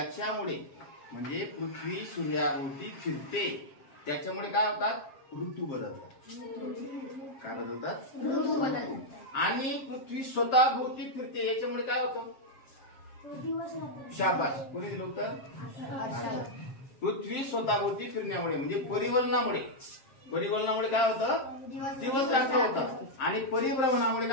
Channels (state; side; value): late; right; 7.4 ms